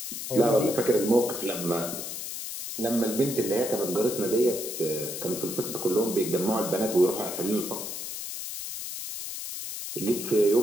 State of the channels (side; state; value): left; noise; hiss, 7 dB below the sound